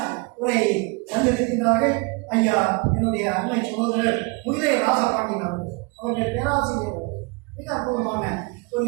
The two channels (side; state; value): left; quieter; 29.4 dB